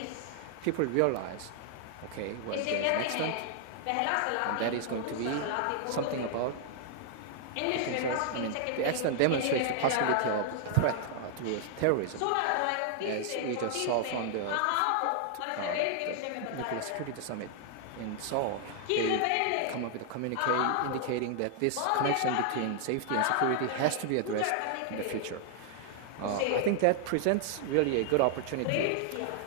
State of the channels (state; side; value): different; both; correlation 0.00